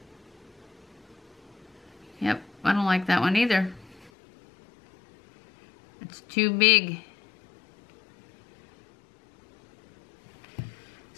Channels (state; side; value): drops out; right; at 4.1 s